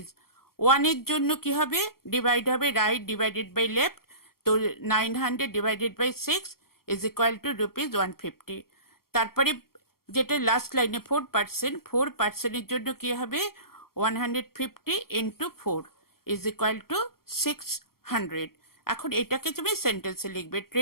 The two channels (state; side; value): late; right; 0.93 ms